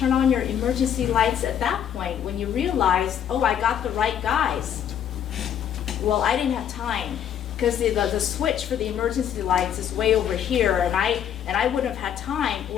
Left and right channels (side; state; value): right; quieter; 9.4 dB